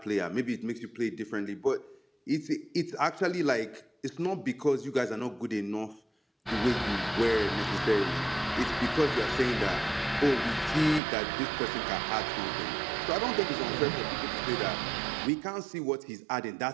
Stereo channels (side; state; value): left; drops out; at 11.0 s